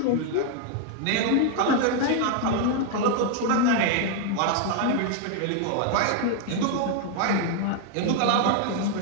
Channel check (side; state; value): both; different; correlation 0.00